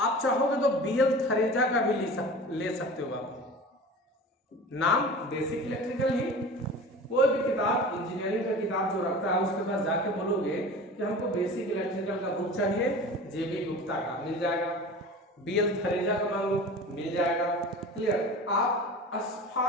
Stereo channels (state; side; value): normal; both; correlation 0.36